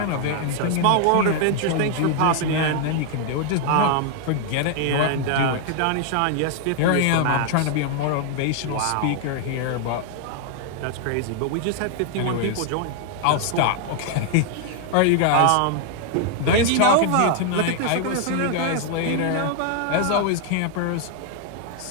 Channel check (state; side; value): different; both; correlation 0.00